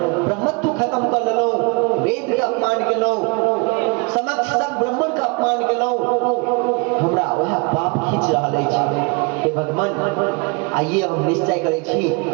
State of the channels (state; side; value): quieter; left; 30.5 dB